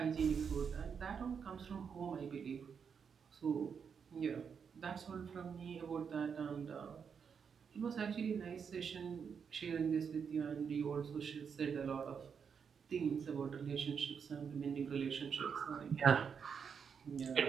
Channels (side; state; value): left; quieter; 6.6 dB